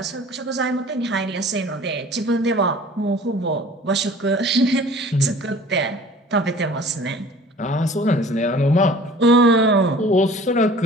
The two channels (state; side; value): normal; both; correlation 0.47